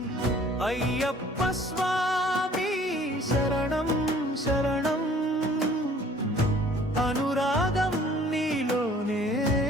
అయ్యప్ప స్వామి శరణం శరణం, అనురాగం నీలోనే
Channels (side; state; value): both; normal; correlation 0.54